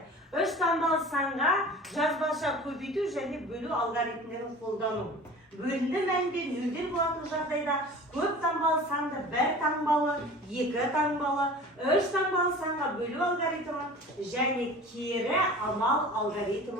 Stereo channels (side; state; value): both; normal; correlation 0.40